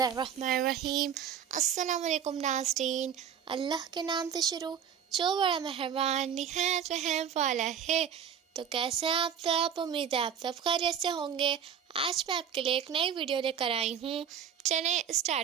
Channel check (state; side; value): quieter; left; 8.3 dB